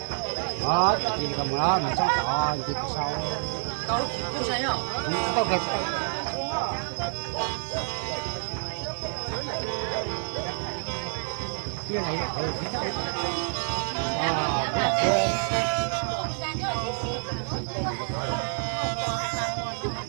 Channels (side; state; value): left; silent; 59 dB below the other